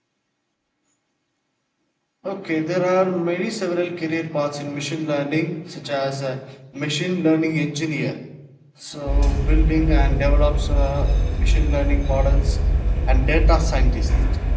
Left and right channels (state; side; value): identical; both; correlation 1.00